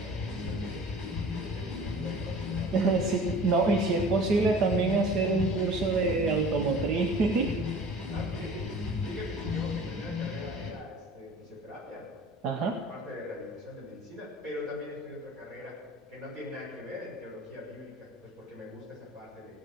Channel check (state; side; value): normal; both; correlation 0.44